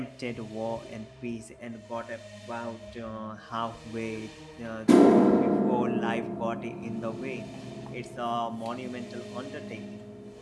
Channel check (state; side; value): identical; both; correlation 1.00